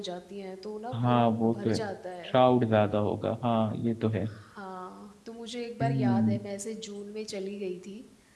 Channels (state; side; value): identical; both; correlation 1.00